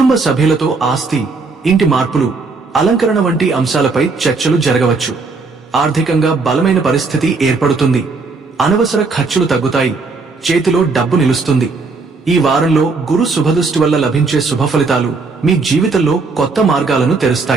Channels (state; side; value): quieter; left; 4.1 dB